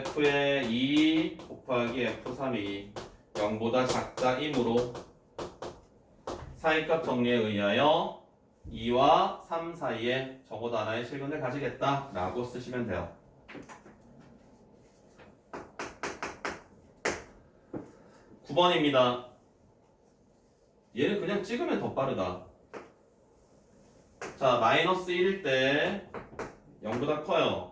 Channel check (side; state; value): both; identical; correlation 1.00